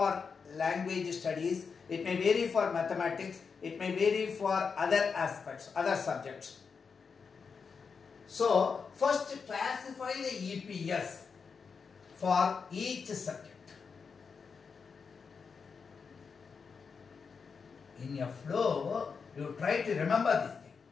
language studies, it may vary for mathematics, it may vary for other aspects, other subjects. So, first classify the EPS for each subject. In your flow, you try to remember this thing.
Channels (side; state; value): right; quieter; 5.6 dB